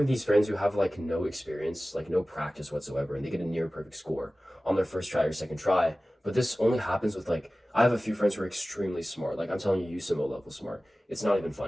these friends who have like no experience, like no practice whatsoever, and they get a near perfect score on their first try or second try. But this only happens with like, I have a few friends who are extremely smart. Like I'm telling you, USIMO level smart. It's not even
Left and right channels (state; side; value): normal; both; correlation 0.97